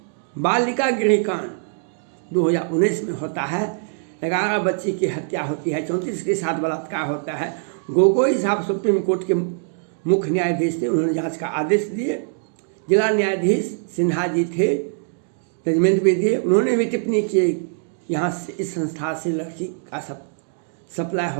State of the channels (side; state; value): left; silent; digital silence